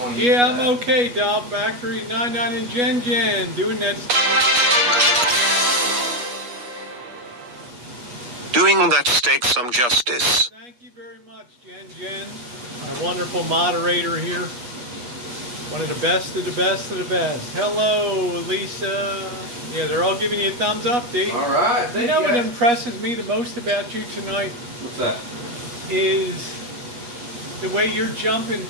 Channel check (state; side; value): late; left; 8.3 ms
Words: want to. Yeah, I'm okay. Doll Factory 99 and Jen doing that. Doing that steak some justice. Thank you very much, Jen. My wonderful moderator here. One of the best of the best of the best. Hello, Lisa. Yeah, they're all giving you a thumbs up, D. All right. You know what impresses me the most about you tonight? What's that? Is the way you're jumping